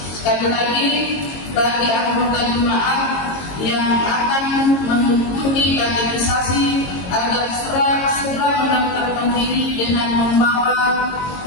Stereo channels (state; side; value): late; right; 22 ms